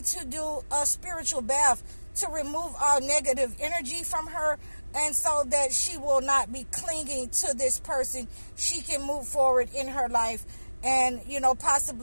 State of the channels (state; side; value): inverted; both; correlation -1.00